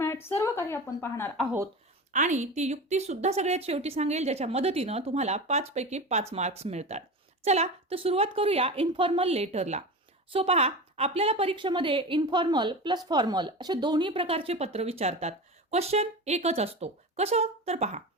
सर्व काही आपण पाहणार आहोत. आणि ती युक्ती सुद्धा सगळ्यात शेवटी सांगेल, ज्याच्या मदतीनं तुम्हाला 5 पैकी 5 मार्क्स मिळतात. चला, तर सुरुवात करूया इन्फॉर्मल लेटरला. सो पहा, आपल्याला परीक्षेमध्ये इन्फॉर्मल प्लस फॉर्मल असे दोन्ही प्रकारचे पत्र विचारतात. क्वेश्चन एकच असतो. कसं? तर पहा,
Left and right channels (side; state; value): both; normal; correlation 0.27